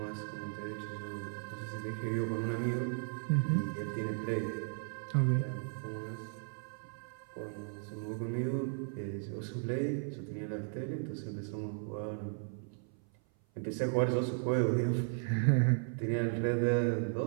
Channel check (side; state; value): left; silent; 54 dB below the other